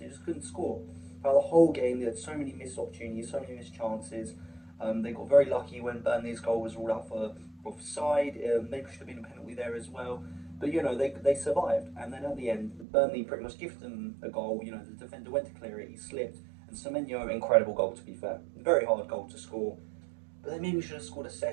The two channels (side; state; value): left; drops out; at 12.9 s